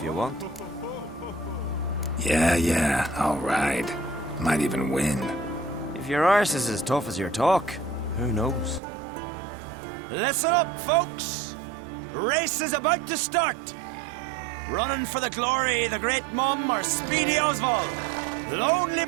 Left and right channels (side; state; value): left; drops out; at 8.8 s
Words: you want. Yeah, I'll ride. Might even win. If your arse is as tough as your talk, who knows? Listen up, folks! Race is about to start! Running for the glory, the great mum or Speedy Oswald, Lonely